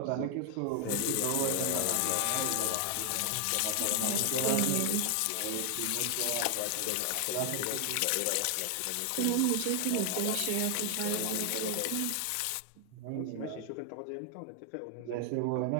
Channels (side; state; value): both; different; correlation 0.00